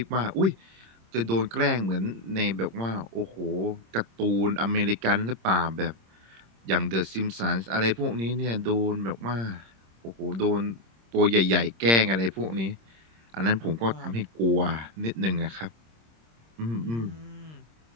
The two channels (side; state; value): left; late; 26 ms